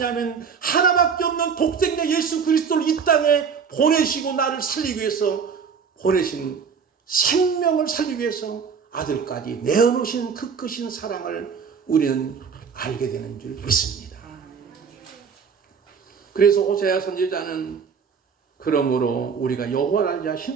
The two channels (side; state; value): left; quieter; 6.2 dB